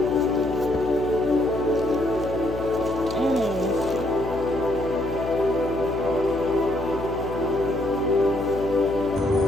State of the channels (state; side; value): noise; left; hum, 10 dB below the sound